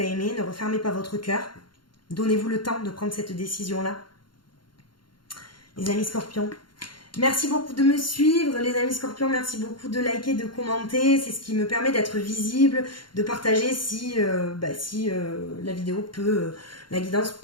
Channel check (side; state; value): right; late; 0.72 ms